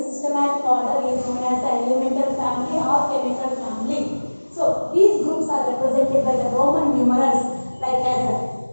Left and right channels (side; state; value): both; inverted; correlation -1.00